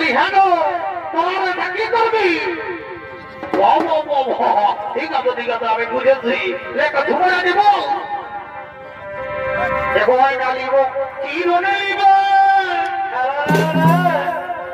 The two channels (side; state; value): both; identical; correlation 1.00